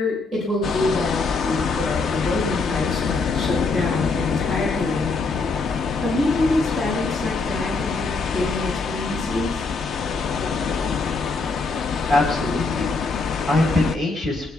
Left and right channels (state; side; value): quieter; right; 3.7 dB